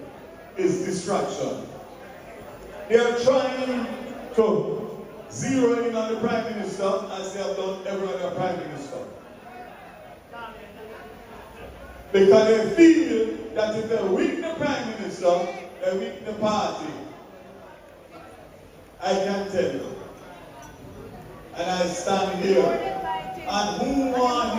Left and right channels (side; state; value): both; identical; correlation 1.00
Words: is distraction. They are trying to zero in on the Prime Minister as they have done every other Prime Minister. Because they feel that if they weaken the Prime Minister, they weaken the party. I can tell you. And I stand here. And who want